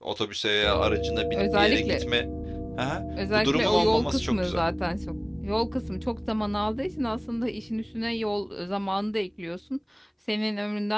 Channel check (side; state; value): both; identical; correlation 1.00